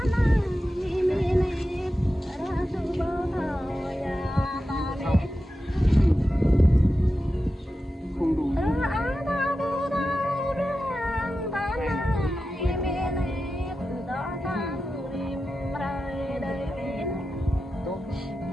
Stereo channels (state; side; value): normal; both; correlation 0.92